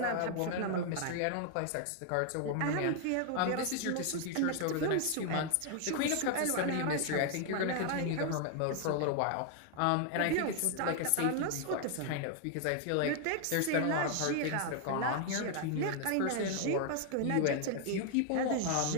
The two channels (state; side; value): different; both; correlation 0.00